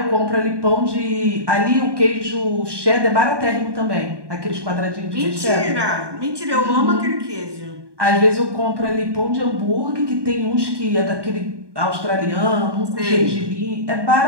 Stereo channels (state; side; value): late; left; 1.2 ms